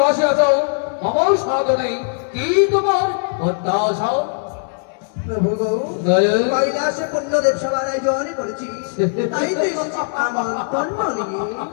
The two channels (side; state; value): right; silent; 66 dB below the other